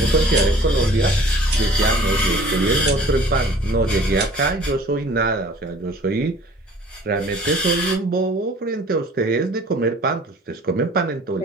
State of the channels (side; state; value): both; normal; correlation 0.49